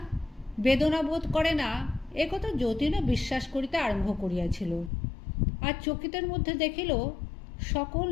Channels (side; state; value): right; drops out; at 4.9 s